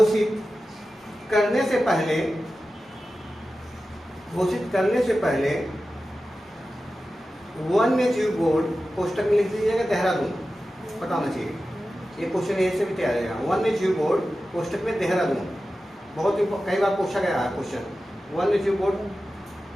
करने से पहले वन्य जीव बोर्ड, कोष्टक में लिख दीजिएगा देहरादून, पता होना चाहिए, ये क्वेश्चन ऐसे भी तैयार है। वन्य जीव बोर्ड कोष्टक में देहरादून, बहुत कई बार पूछा गया है क्वेश्चन। वन्य जीव बोर्ड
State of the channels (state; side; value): normal; both; correlation 0.94